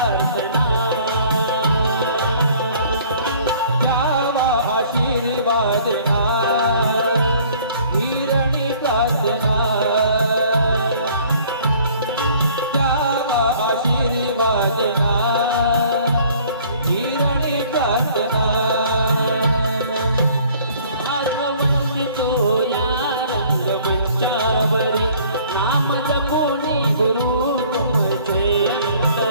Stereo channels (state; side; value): inverted; both; correlation -0.55